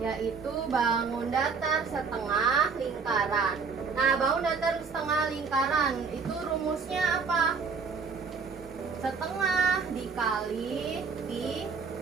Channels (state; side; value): quieter; left; 5.3 dB